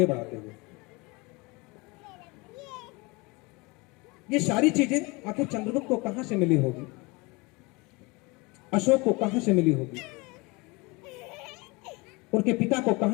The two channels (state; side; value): quieter; right; 26.0 dB